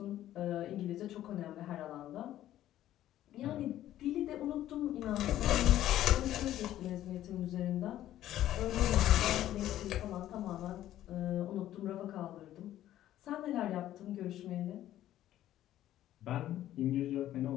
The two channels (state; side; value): quieter; right; 13.0 dB